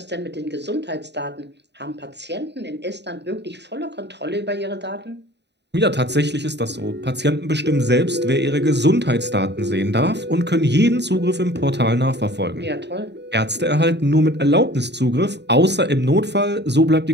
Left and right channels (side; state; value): left; late; 0.50 ms